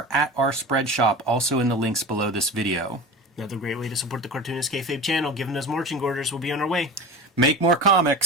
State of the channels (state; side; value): normal; both; correlation 0.31